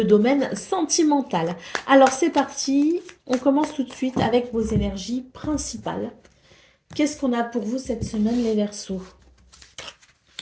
domaine sentimental. Alors c'est parti, on commence tout de suite avec vos énergies principales. Qu'est-ce qu'on a pour vous cette semaine, les Verseaux?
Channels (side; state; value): both; identical; correlation 1.00